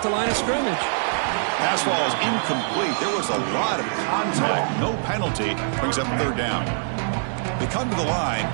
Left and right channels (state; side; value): silent; left; digital silence